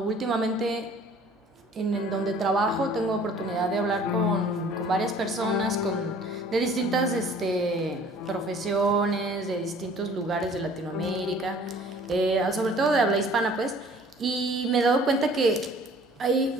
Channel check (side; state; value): both; normal; correlation 0.52